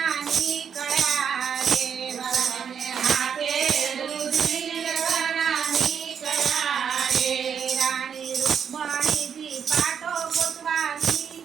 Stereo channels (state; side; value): quieter; left; 7.5 dB